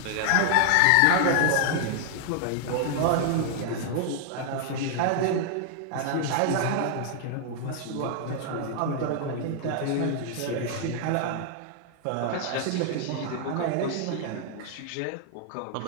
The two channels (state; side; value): different; both; correlation 0.00